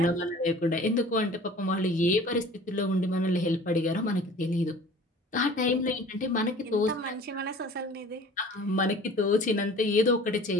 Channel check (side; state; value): both; normal; correlation 0.46